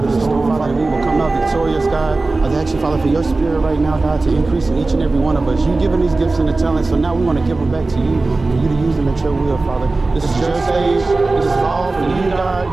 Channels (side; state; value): left; quieter; 3.4 dB